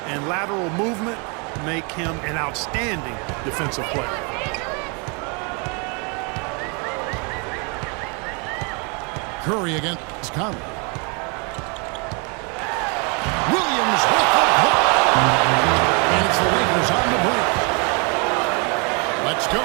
and lateral movement make him an outstanding defensive player. Curry against Conley. Williams with the block. And it's the Lakers on the break. Let's go.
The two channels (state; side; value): quieter; left; 33.7 dB